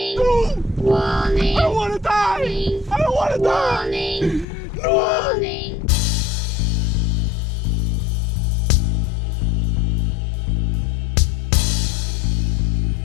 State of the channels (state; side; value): drops out; right; at 4.5 s